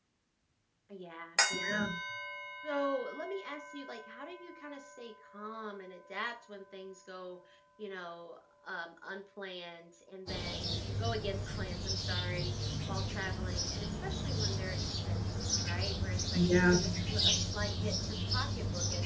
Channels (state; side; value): identical; both; correlation 1.00